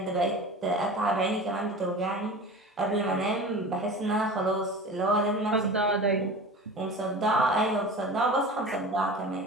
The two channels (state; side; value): normal; both; correlation 0.35